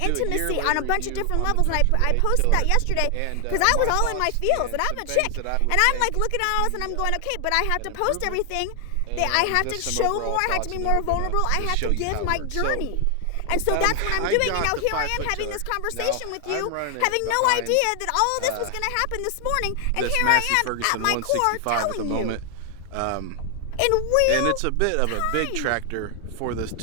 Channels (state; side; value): different; both; correlation 0.00